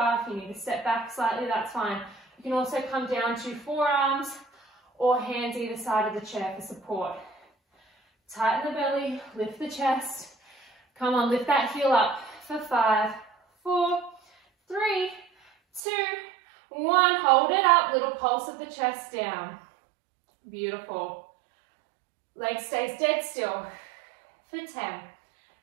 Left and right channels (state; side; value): drops out; left; at 15.8 s